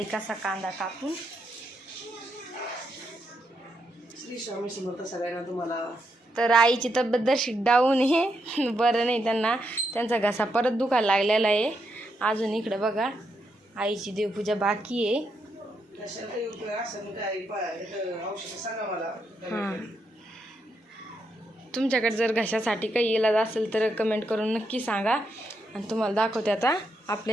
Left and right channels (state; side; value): normal; both; correlation 0.81